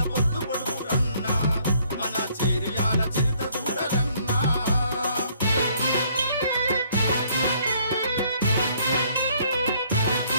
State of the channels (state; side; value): inverted; both; correlation -0.63